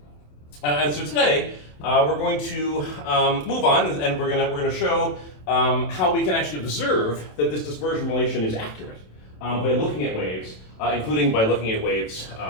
And so today we're going to move on, and we're going to show how we can actually observe that this dispersion relation is accurate by looking at waves, including by looking at waves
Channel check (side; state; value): right; late; 27 ms